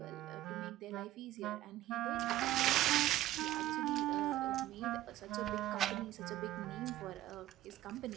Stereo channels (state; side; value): quieter; left; 14.5 dB